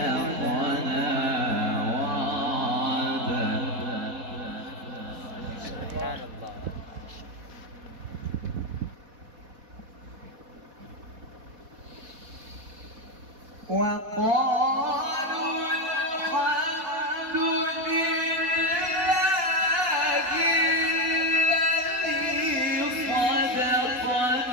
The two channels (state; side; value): late; left; 4.1 ms